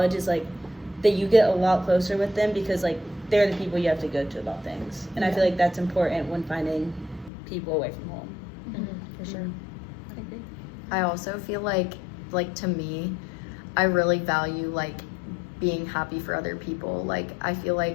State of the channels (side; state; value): right; drops out; at 7.3 s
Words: is like that you get a lot closer with them, because like they're the people you have to go to about things. And I feel like that's important when finding people away from home. For sure. I agree. I also feel like to me, I really value like being happy for other people. Like I feel